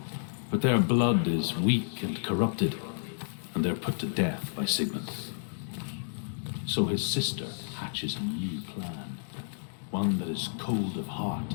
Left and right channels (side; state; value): right; silent; digital silence